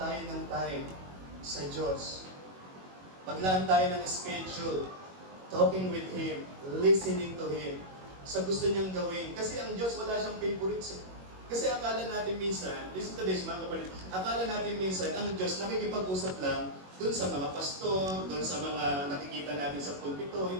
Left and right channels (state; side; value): late; left; 21 ms